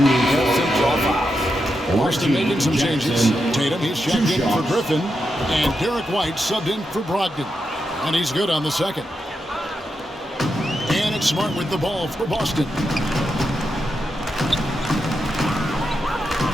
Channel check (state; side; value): normal; both; correlation 0.86